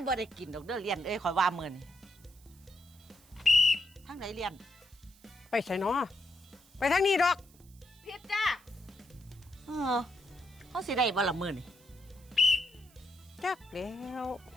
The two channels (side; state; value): right; noise; hiss, 27 dB below the sound